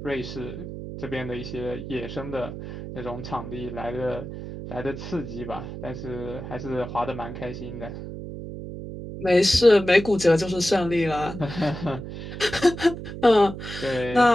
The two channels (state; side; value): noise; right; hum, 9 dB below the sound